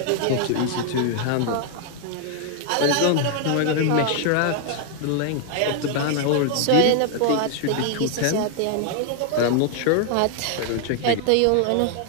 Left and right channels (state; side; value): different; both; correlation 0.00